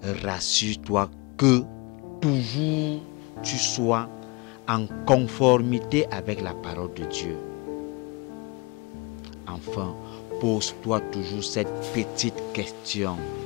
Rassure-toi que toujours tu sois en conformité avec la parole de Dieu. Enfin, pose-toi toujours cette petite question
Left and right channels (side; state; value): right; quieter; 28.0 dB